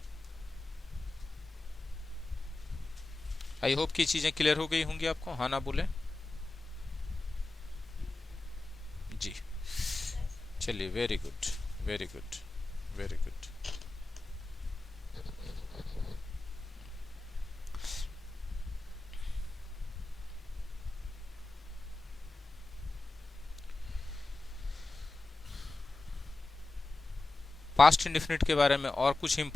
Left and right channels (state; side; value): quieter; right; 3.1 dB